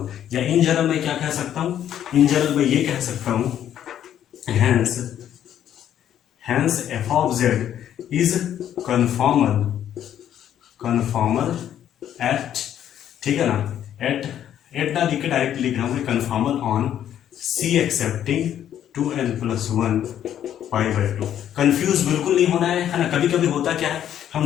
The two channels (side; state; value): right; quieter; 10.5 dB